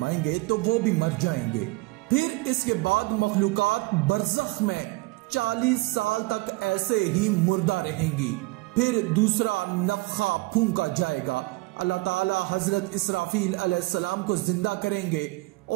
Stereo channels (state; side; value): quieter; left; 22.5 dB